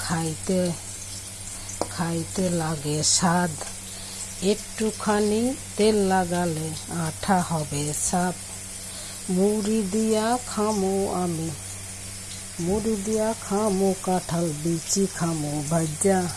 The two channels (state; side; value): identical; both; correlation 1.00